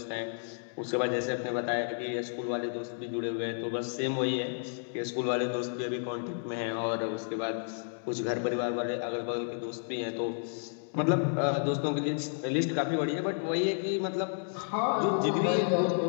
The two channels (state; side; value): silent; right; digital silence